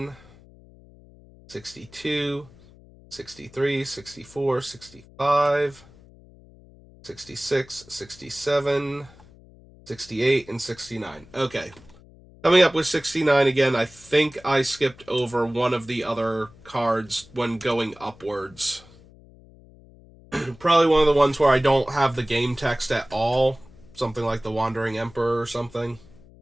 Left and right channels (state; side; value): noise; left; hum, 24 dB below the sound